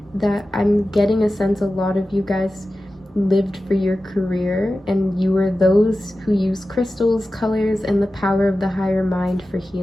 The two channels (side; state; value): both; normal; correlation 0.94